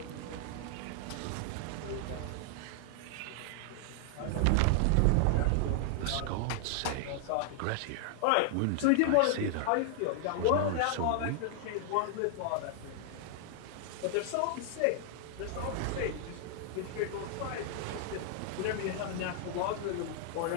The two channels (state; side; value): different; both; correlation 0.00